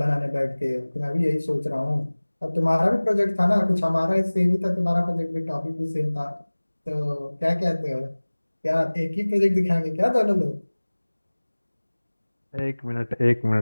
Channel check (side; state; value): both; inverted; correlation -1.00